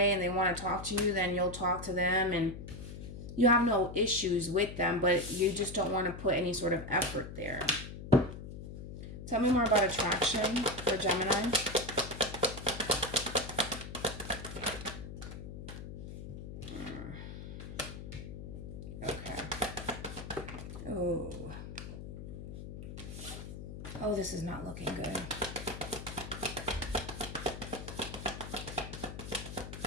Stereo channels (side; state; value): left; noise; hum, 10 dB below the sound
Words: and they want to talk to you, then you'll talk to them and you have no issues with them, but you just don't want to put any sort of effort there. Tell me more about attraction for Gemini. Okay. Oh. Oh, this is not looking good.